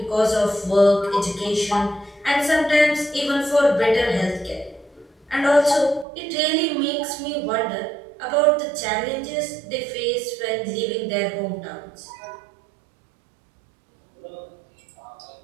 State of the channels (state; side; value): drops out; left; at 6.1 s